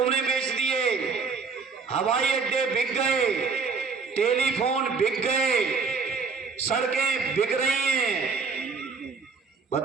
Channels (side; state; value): left; quieter; 4.8 dB